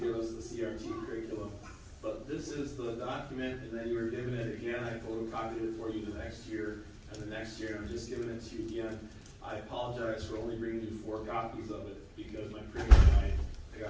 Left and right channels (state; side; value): identical; both; correlation 1.00